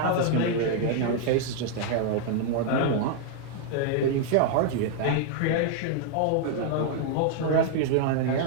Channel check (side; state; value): both; different; correlation 0.00